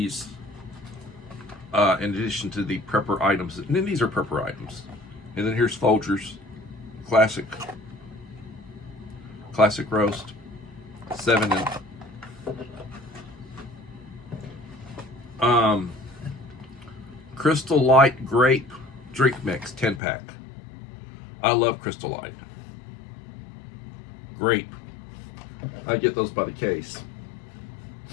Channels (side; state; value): right; drops out; at 20.0 s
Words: in addition to the prepper items. And then these are prepper items. And then here's Folgers Classic Roast 7 and Crystal Light Grape Drink Mix 10-pack. I love Crystal Light. Grape. I get those by the case.